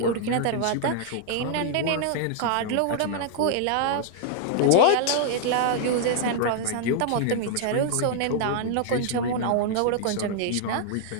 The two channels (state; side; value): different; both; correlation 0.00